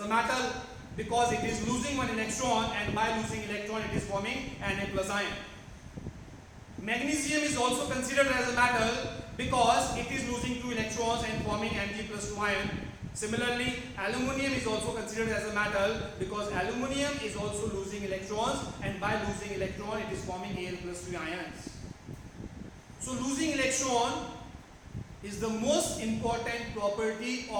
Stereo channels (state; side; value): identical; both; correlation 1.00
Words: metal because it is losing one electron, and by losing electron it is forming Na plus ion. Magnesium is also considered as a metal because it is losing 2 electrons and forming Mg plus 2 ion. Similarly, aluminium is also considered as a metal because aluminium is also losing electrons, and by losing electron it is forming Al plus 3 ions. So losing electron is the most important property